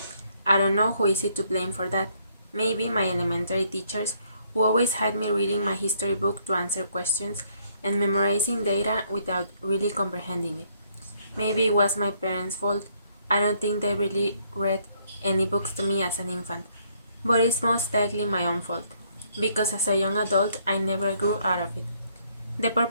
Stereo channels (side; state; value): both; inverted; correlation -0.69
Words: I don't know who is it to blame for that. Maybe my elementary teachers who always had me reading my history book to answer questions and memorizing data without really comprehending it. Maybe it was my parents' fault. I don't think they really read any books to me as an infant. But it's most likely my own fault, because as a young adult I never grew out of it. The